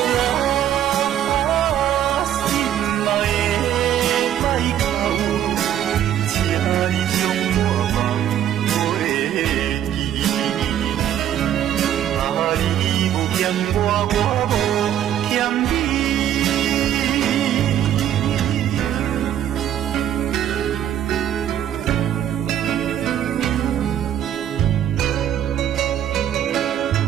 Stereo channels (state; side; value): quieter; left; 10.7 dB